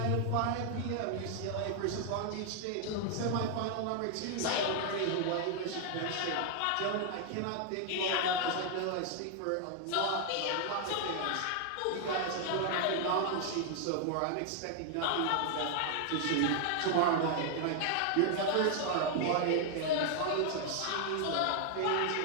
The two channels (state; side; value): different; both; correlation 0.00